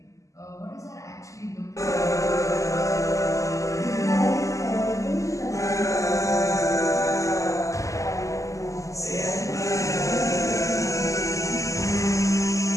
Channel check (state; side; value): late; right; 0.16 ms